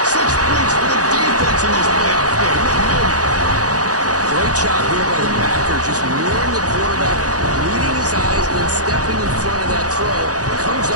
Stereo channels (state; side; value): late; left; 0.67 ms